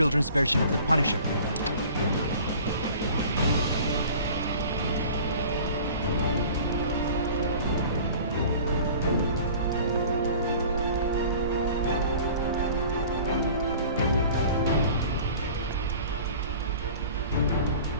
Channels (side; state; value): both; inverted; correlation -0.45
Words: version of the Punisher.